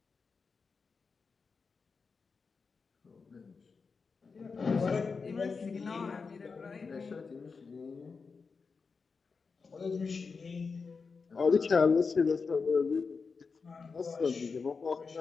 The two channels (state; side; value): quieter; right; 4.9 dB